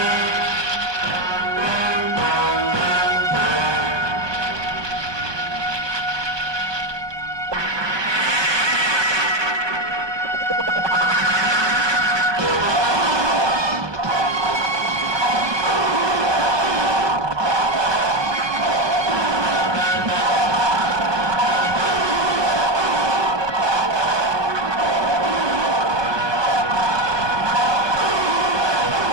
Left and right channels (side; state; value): left; late; 1.2 ms